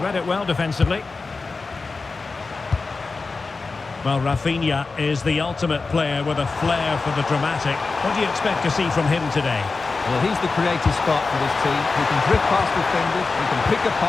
read it well defensively. Well, Rafinha is the ultimate player with a flair for the dramatic. What do you expect to see from him today? Well, he's the creative spark for this team. He can drift past defenders, he can pick a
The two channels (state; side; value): quieter; right; 4.1 dB